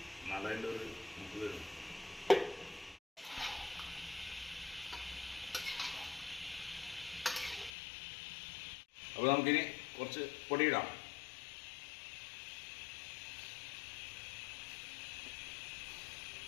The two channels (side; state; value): right; drops out; at 7.7 s